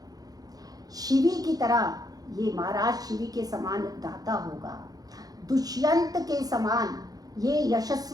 शिवी की तरह ये महाराज शिवी के समान दाता होगा, दुष्यंत के समान ये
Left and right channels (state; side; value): late; left; 0.18 ms